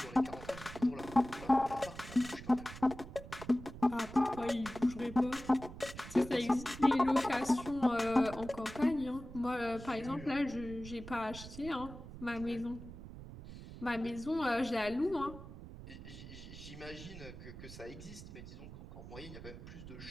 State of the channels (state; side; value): noise; right; rumble, 13 dB below the sound